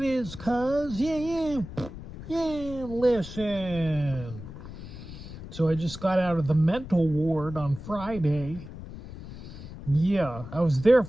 is, cuz? Yeah, listen. So I just got out of the mental ward on Friday. Yeah, I was there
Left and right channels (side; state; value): left; noise; rumble, 12 dB below the sound